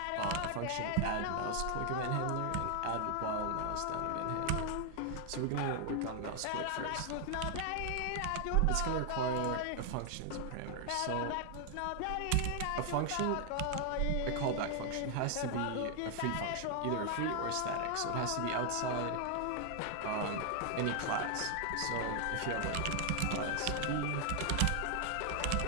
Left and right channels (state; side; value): different; both; correlation 0.00